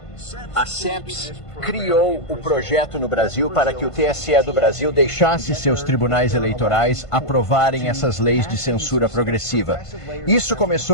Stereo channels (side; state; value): right; late; 1.5 ms